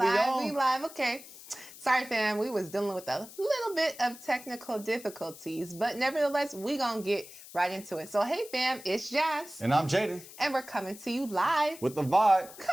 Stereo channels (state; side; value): noise; left; hiss, 17 dB below the sound